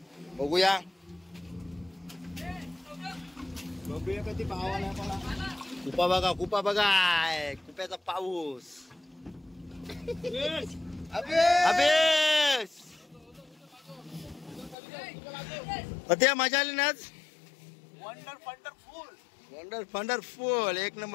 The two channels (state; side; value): drops out; right; at 14.8 s